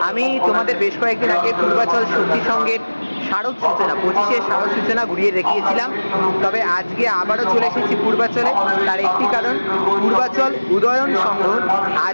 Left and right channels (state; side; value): inverted; both; correlation -1.00